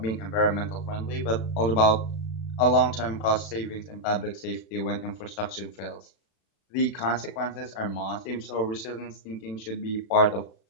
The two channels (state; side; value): late; right; 36 ms